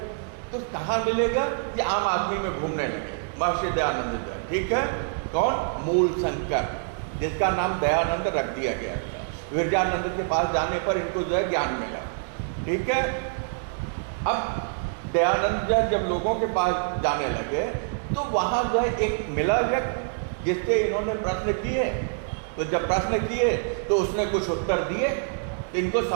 तो कहाँ मिलेगा, ये आम आदमी में घूमने लगे। महर्षि दयानंद जी, ठीक है, कौन, मूल शंकर, जिसका नाम दयानंद रख दिया गया था। विरजानंद के पास जाने पर इनको जो है ज्ञान मिला, ठीक है। अब दयानंद जब लोगों के पास जाने लगे तो वहाँ जो है एक मिला व्यक्ति जिससे इन्होंने प्रश्न किए। तो जब प्रश्न किए तो उसने कुछ उत्तर दिए, तो इनको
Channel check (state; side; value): silent; left; digital silence